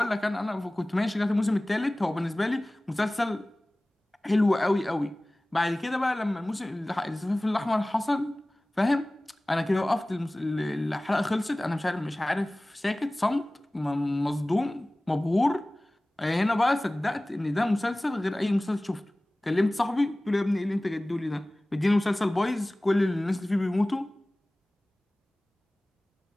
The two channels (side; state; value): both; normal; correlation 0.98